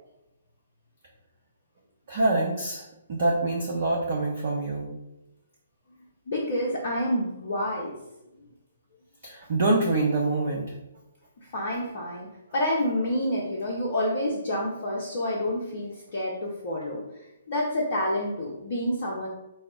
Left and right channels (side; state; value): both; inverted; correlation -0.68